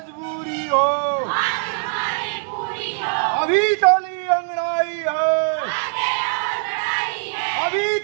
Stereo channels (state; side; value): silent; left; 65 dB below the other